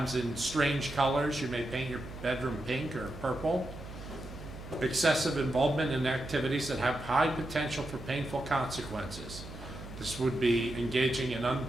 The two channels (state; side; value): noise; right; hum, 12 dB below the sound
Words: in strange colors. You may paint your bedroom pink or purple. Excessive involvement in activities that have high potential for painful consequences. This would be engaging in